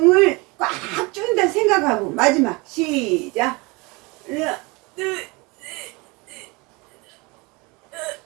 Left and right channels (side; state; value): left; quieter; 26.4 dB